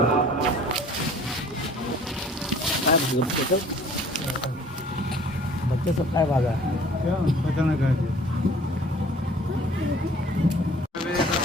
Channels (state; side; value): normal; both; correlation 0.52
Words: बच्चे सब काय भागा क्या पता नहीं कहे